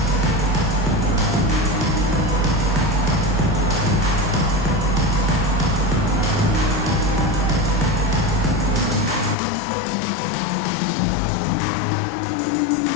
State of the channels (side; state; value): right; drops out; at 9.3 s